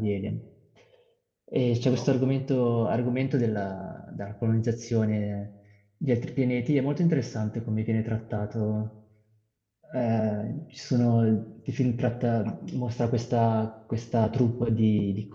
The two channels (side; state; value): both; identical; correlation 1.00